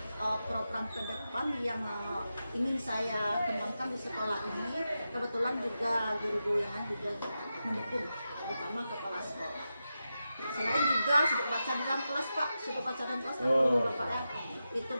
program ke depan yang ingin saya kembangkan di sekolah ini. Kebetulan juga guru-guru yang lain juga mendukung, terutama kepala sekolah. Selain juga sudut baca di dalam kelas Pak, sudut baca dalam kelas Bapak ya, itu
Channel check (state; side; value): inverted; both; correlation -0.90